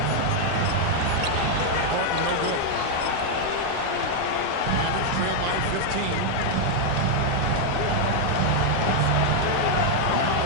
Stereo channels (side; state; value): both; different; correlation 0.00